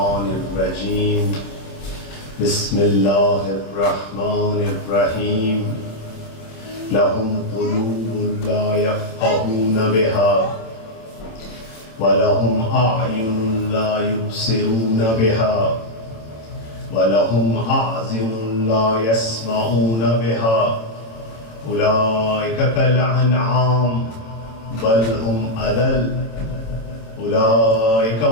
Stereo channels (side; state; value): right; late; 27 ms